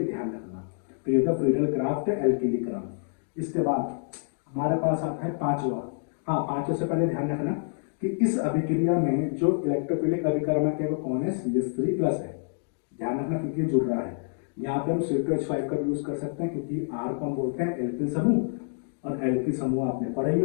ध्यान रखना। तो ये था फ्रीडल क्राफ्ट एल्किलीकरण। इसके बाद हमारे पास आता है पांचवा। हाँ, पांचवे से पहले ध्यान रखना कि इस अभिक्रिया में जो इलेक्ट्रोफिलिक अभिकर्मक है वो कौन है, CH3 प्लस है, ध्यान रखना क्योंकि ये जुड़ रहा है। यहाँ पे हम C2H5 का यूज कर सकते हैं क्योंकि R को हम बोलते हैं एल्किल समूह, और एल्किल समूह आपने पढ़े ही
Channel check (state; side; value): silent; right; digital silence